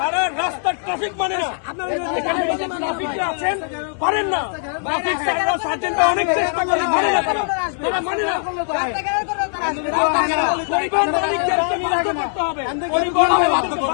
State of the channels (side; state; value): right; silent; digital silence